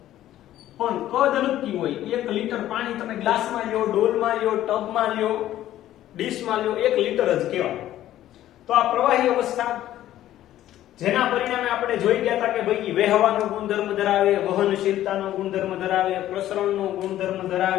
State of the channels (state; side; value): quieter; right; 13.2 dB